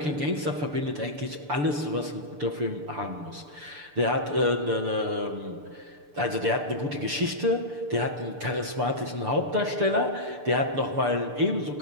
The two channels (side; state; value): left; late; 6.8 ms